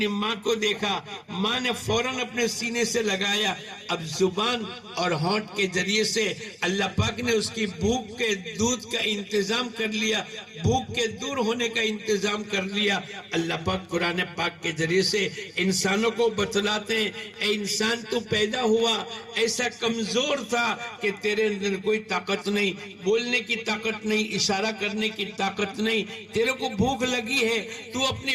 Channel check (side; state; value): both; identical; correlation 1.00